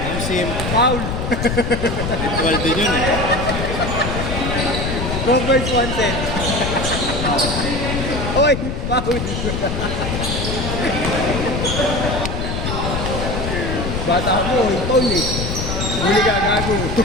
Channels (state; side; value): noise; left; rumble, 3 dB below the sound